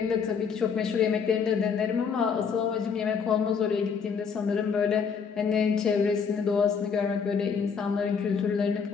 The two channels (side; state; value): right; quieter; 6.2 dB